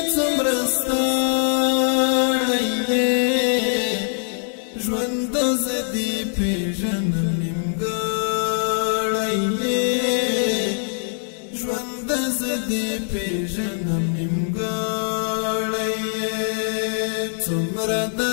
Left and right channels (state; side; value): silent; right; digital silence